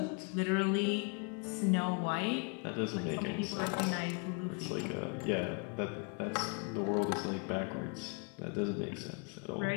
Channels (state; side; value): quieter; right; 34.2 dB